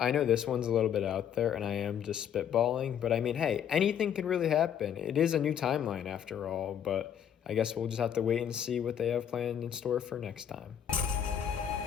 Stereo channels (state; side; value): quieter; right; 9.1 dB